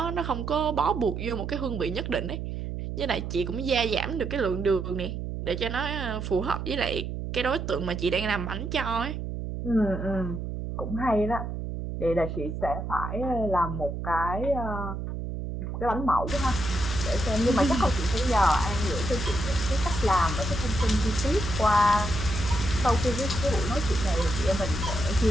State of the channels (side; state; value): right; noise; hum, 5 dB below the sound